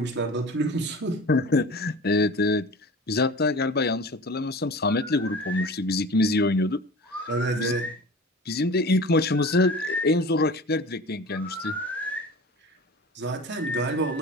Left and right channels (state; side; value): normal; both; correlation 0.38